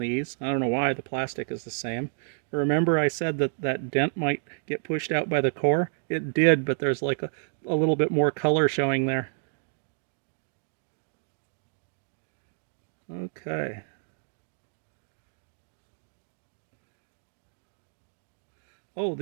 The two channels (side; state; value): left; silent; digital silence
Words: I don't know why, the plastic is the same. Remember I said that that dent might get pushed out by the core? It did, but there's like a little bit more color showing there. Okay. Oh,